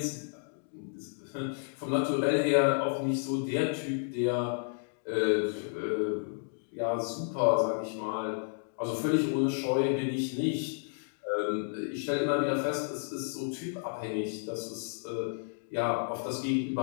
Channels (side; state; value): right; silent; digital silence